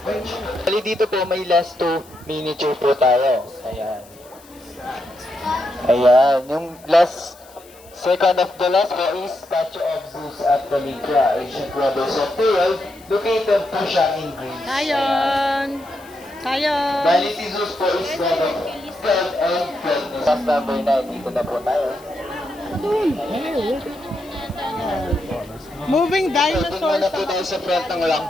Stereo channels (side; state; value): left; noise; hiss, 25 dB below the sound